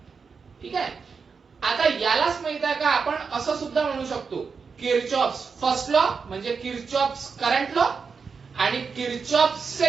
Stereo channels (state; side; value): quieter; left; 5.4 dB